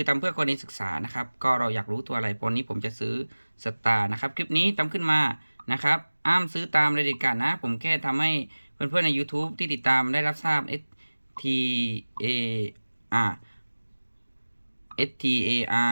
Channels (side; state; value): both; inverted; correlation -1.00